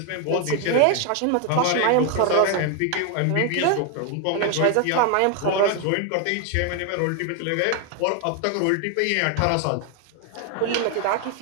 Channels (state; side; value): different; both; correlation 0.01